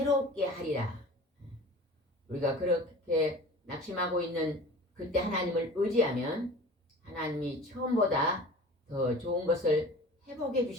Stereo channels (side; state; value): both; normal; correlation 0.40